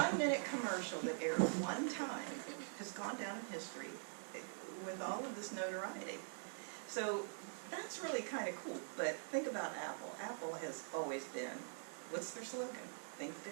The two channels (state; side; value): silent; left; digital silence